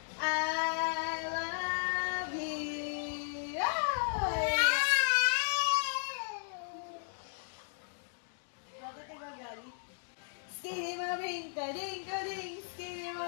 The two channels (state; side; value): silent; right; digital silence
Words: I love you. Bakit ka gagalit? Skiddy maring ka, ding ka, ding. Skiddy